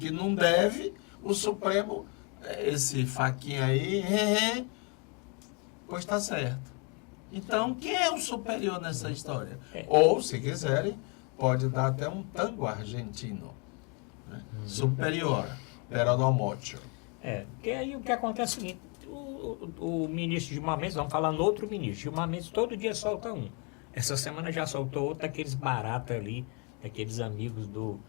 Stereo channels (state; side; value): quieter; right; 32.3 dB